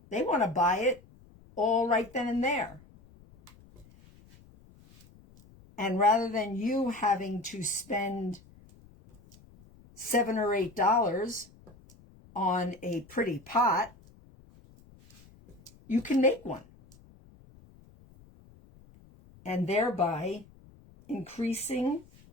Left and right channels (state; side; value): noise; left; rumble, 25 dB below the sound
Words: They want to buy it all right then and there. And rather than you having to spend $7 or $8 on a pretty pot, you can make one, and thereby increasing